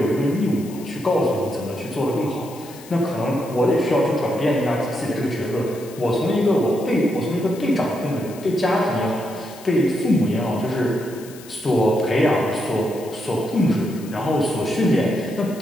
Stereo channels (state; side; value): noise; left; hiss, 19 dB below the sound